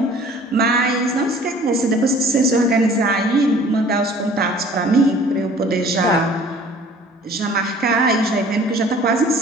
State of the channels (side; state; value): both; normal; correlation 0.50